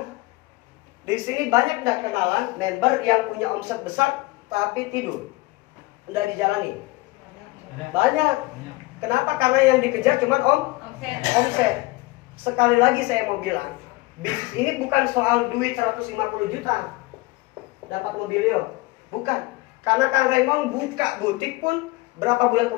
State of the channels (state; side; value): quieter; right; 21.4 dB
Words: Di sini banyak nggak kenalan member yang punya omset besar tapi tidur, nggak dijalani. Banyak. Kenapa? Karena yang dikejar cuma omset. Sekali lagi saya mau bilang, bisnis ini bukan soal duit 150 juta dapat mobilio, bukan. Karena Kang Raymond buka butik pun berapa bulan